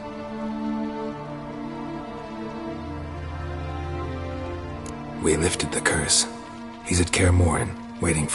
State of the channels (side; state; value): both; identical; correlation 1.00